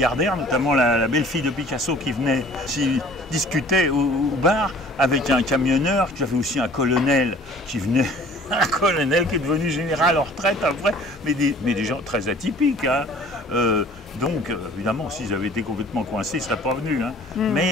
notamment la belle-fille de Picasso qui venait, qui discutait au bar avec un camionneur, tu avais aussi un colonel qui venait, un colonel qui est devenu général en retraite après, mais des gens très atypiques. Donc, évidemment, s'ils avaient été complètement coincés, ils ne seraient pas venus.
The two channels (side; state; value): both; normal; correlation 0.50